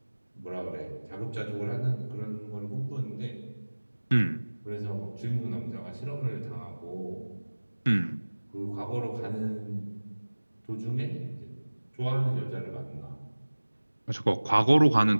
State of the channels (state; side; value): inverted; both; correlation -1.00